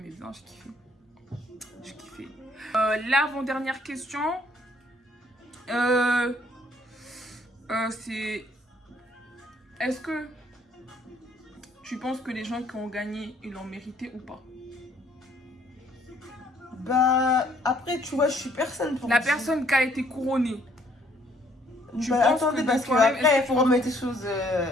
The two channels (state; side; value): normal; both; correlation 0.64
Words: bien, je kiffais. Je kiffais. L'avant-dernière question, c'est: est-ce que tu penses que les gens qui ont gagné, ils l'ont mérité ou pas? Bah, après, tu vois, je suis personne pour la personne qui a été couronnée. Bah, attendez, parce qu'après, il faut remettre les choses